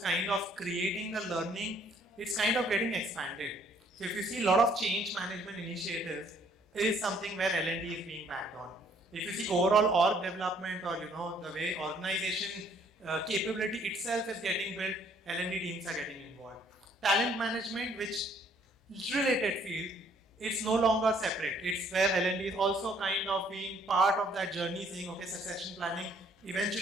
kind of creating the learning, it's kind of getting expanded. So if you see a lot of change management initiatives, is something where L&D is being backed on. If you see overall org development or the way organization capability itself is getting built, L&D teams are getting involved. Talent management, which is related field, it's no longer separate. It's where L&D is also kind of being part of that journey, saying, okay, succession planning,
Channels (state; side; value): normal; both; correlation 0.63